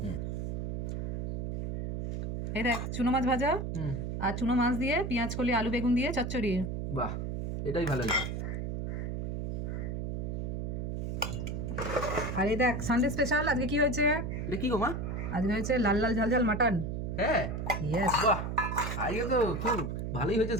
হুম। এই দেখ চুনো মাছ ভাজা, আর চুনো মাছ দিয়ে পেঁয়াজ কলি আলু বেগুন দিয়ে চচ্চড়ি। বাহ, এটাই ভালো লাগে। আর এই দেখ সানডে স্পেশাল আজকে কি হয়েছে। এটা কি গো মা? আজকে হয়েছে লাল লাল ঝাল ঝাল মাটন। হ্যাঁ। ইয়েস। বাহ, আজকে তো খুব ভালোই হয়েছে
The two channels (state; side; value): noise; right; hum, 3 dB below the sound